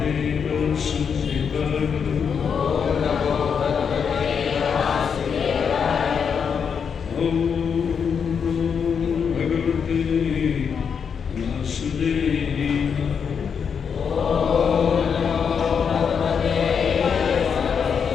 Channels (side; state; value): right; quieter; 6.7 dB